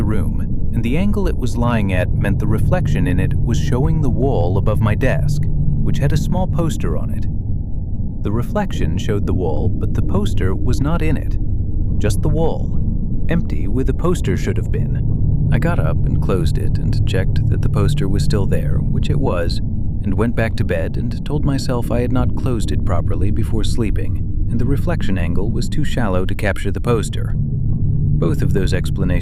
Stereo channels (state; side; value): identical; both; correlation 1.00